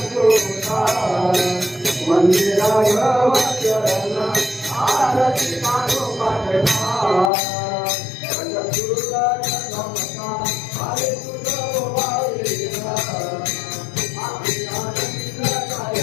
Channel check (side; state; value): right; drops out; at 7.3 s